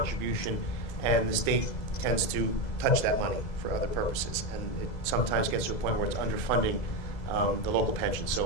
and the state tends to touch that money for other purposes, and it sometimes gets to a point where it's underfunding the local pension.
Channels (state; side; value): late; right; 2.0 ms